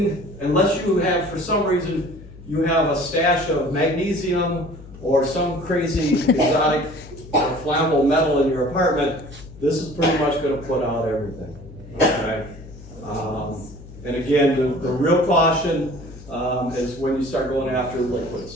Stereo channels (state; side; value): noise; left; hum, 17 dB below the sound